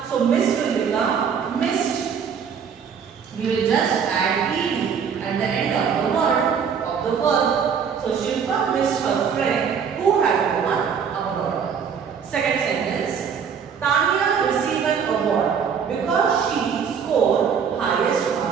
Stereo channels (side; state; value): left; quieter; 7.0 dB